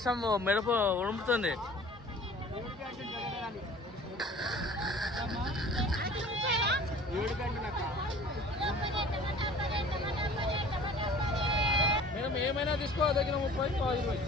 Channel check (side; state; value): both; normal; correlation 0.47